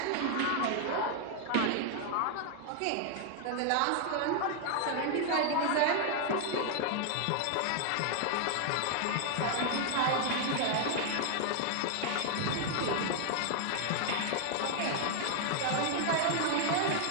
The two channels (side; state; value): both; different; correlation 0.00